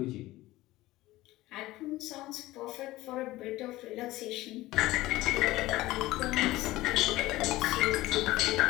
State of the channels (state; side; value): quieter; right; 17.7 dB